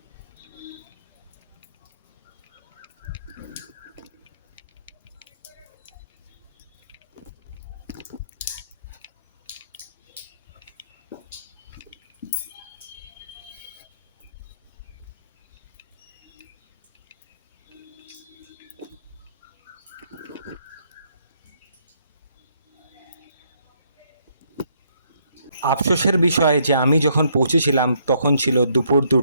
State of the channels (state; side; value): inverted; both; correlation -0.71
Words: আফসোসের বিষয় যে আমি যখন পৌঁছেছিলাম তখন ছিল দুপুর